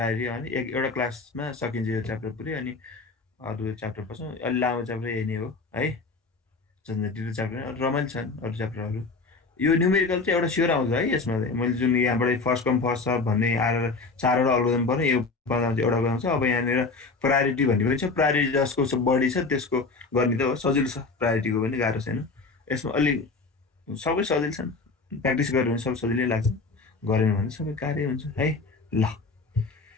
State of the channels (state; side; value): quieter; right; 4.0 dB